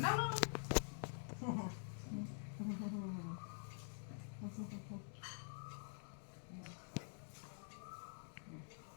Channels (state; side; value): silent; right; digital silence